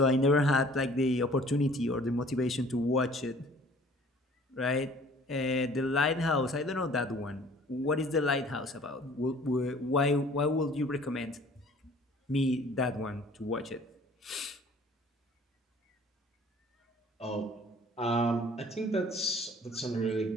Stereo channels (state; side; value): normal; both; correlation 0.52